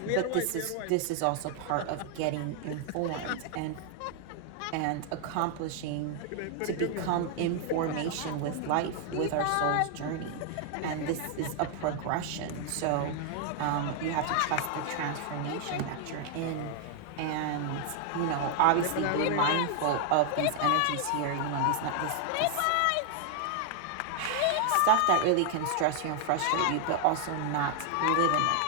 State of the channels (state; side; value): different; both; correlation 0.00